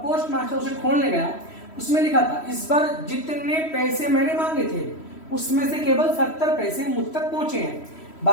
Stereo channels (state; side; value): late; right; 3.1 ms